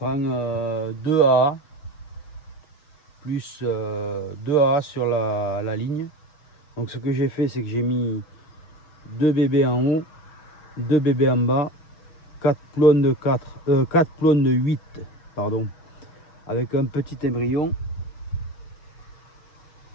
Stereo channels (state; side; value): late; right; 6.5 ms